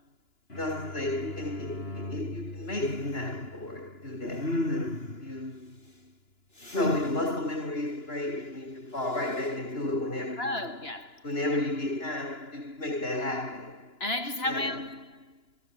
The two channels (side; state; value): right; late; 2.9 ms